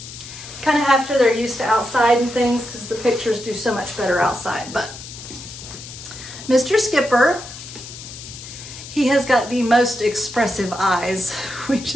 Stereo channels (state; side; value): noise; left; hiss, 13 dB below the sound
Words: kind of after they're used to outside and things, because the pictures do so much better outside. But Mr. Skipper, he has got the most expressive eyes.